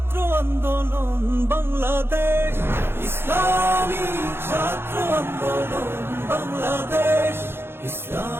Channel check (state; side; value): late; left; 0.11 ms